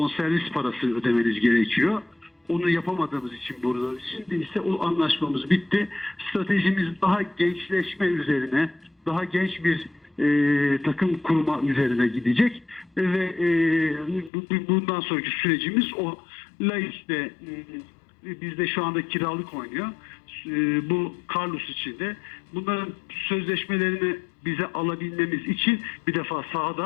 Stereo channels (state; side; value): drops out; right; at 14.3 s